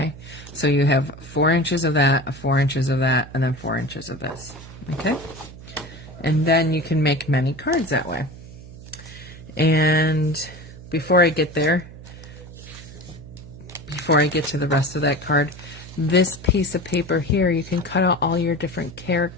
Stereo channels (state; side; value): noise; right; hum, 16 dB below the sound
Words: So you have 4 inches of that, 4 inches of that, and then 4 inches of this, okay? And then you can make many cards that way. And before I get there, before I get to the rest of that card, this piece of paper here, you can cut out all your different